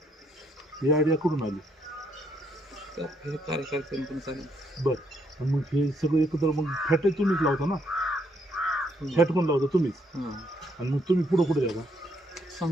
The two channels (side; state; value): both; normal; correlation 0.72